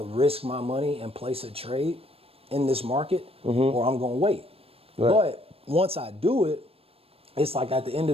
risk my money and place a trade in this market or I'm going to wait. Right. But once I do it, it's like at the end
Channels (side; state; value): left; late; 0.28 ms